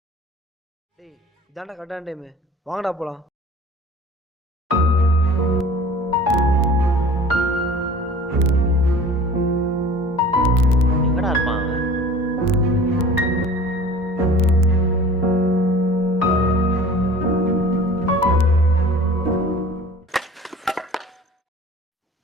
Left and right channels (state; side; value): normal; both; correlation 0.44